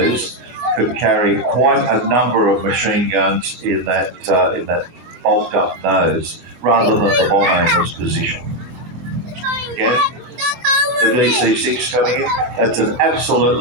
could carry quite a number of machine guns in that bulked up nose, rather than the bomb anger's position. Again, the DC-6 coming in. That's an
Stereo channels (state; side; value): late; left; 24 ms